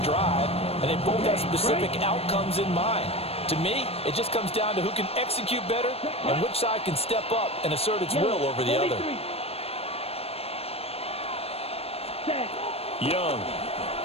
drive, and they both have specific outcomes in mind. To me, it just comes down to who can execute better and which side can step up and assert its will over the other. Young.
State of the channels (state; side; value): late; right; 0.29 ms